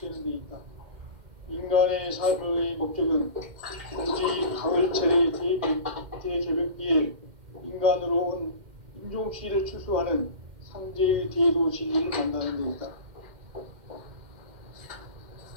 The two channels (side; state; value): left; late; 2.1 ms